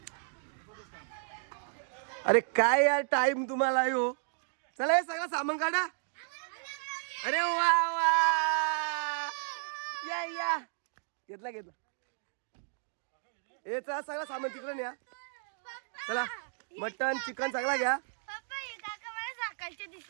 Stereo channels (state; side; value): silent; left; digital silence